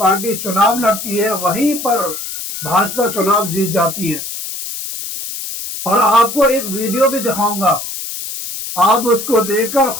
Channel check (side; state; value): left; noise; hiss, 7 dB below the sound